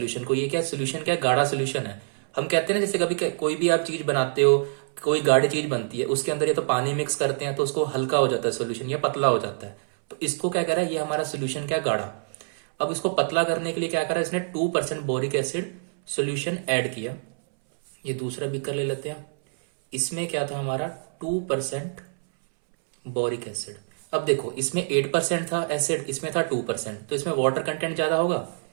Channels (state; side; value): silent; left; 61 dB below the other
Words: को। ये क्या सोल्यूशन, क्या गाढ़ा सोल्यूशन है। हम कहते हैं ना जैसे कभी कोई भी आप चीज बनाते हो, कोई गाढ़ी चीज बनती है, उसके अंदर ये तो पानी मिक्स करते हैं तो उसको हल्का हो जाता है सोल्यूशन, या पतला हो जाता है। तो इसको क्या कह रहा है, ये हमारा सोल्यूशन क्या गाढ़ा। अब इसको पतला करने के लिए क्या करा, इसने 2% बोरिक एसिड सोल्यूशन ऐड किया। ये दूसरा बीकर ले लेते हैं, इसमें क्या था हमारा 2% बोरिक एसिड। अब देखो इसमें 8% था एसिड, इसमें था 2%, तो इसमें वाटर कंटेंट ज्यादा होगा।